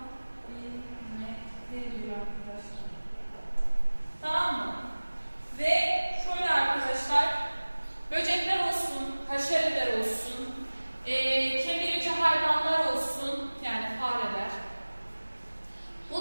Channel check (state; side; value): inverted; both; correlation -1.00